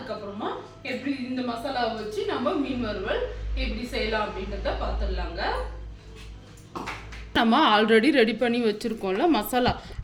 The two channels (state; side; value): identical; both; correlation 1.00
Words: எப்படி இந்த மசாலாவை வச்சு நம்ம மீன் வறுவல் எப்படி செய்யலாம் அப்படின்றத பார்த்துடலாங்க. நம்ம ஆல்ரெடி ரெடி பண்ணி வச்சுருக்கோம்ல மசாலா,